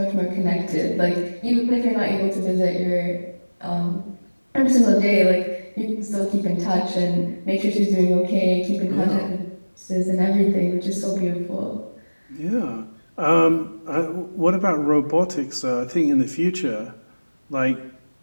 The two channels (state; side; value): inverted; both; correlation -1.00